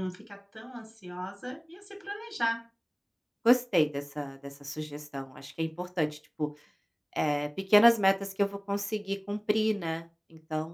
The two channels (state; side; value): identical; both; correlation 1.00